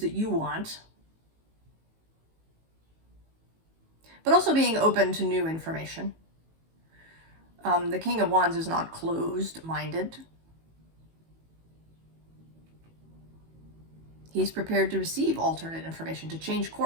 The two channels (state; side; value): late; left; 18 ms